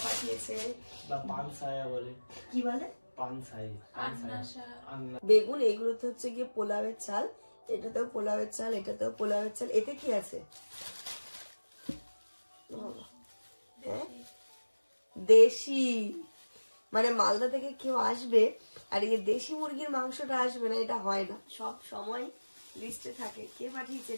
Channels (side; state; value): both; inverted; correlation -1.00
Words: পাঠিয়েছে। বা পানসায়া বলে। কি বলে? বেগুন এইগুলো তো হচ্ছে গিয়ে পোলাওয়ের চাল, এটাতেও পোলাওয়ের চাল, এটাতেও পোলাওয়ের চাল। এতে কি আছে? হ্যাঁ, দেশি। মানে মালদা থেকে কেউ আসবে আর এই দেশি মুরগির মাংসটা আসবে না, এটা হয় না। সব সময় লিস্টে থাকে কে পাঠিয়েছে,